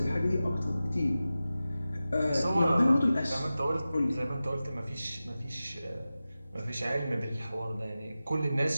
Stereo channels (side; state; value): both; inverted; correlation -0.95